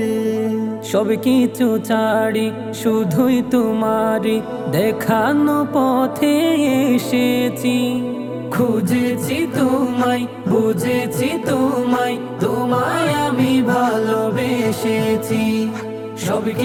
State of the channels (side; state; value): both; identical; correlation 1.00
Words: সব কিছু ছাড়ি শুধুই তোমারি দেখানো পথে এসেছি। খুঁজেছি তোমায় বুঝেছি তোমায়, তোমায় আমি ভালোবেসেছি। সব